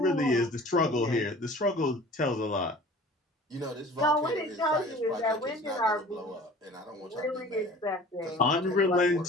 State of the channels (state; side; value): normal; both; correlation 0.45